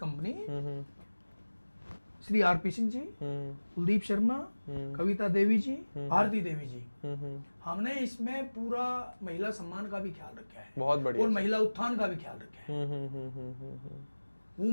Shri RP Singh ji, Kuldeep Sharma, Kavita Devi ji, Bharati Devi ji. हमने इसमें पूरा महिला सम्मान का भी ख्याल रखा है, बहुत बढ़िया, और महिला उत्थान का भी ख्याल रखा है।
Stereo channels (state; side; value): inverted; both; correlation -1.00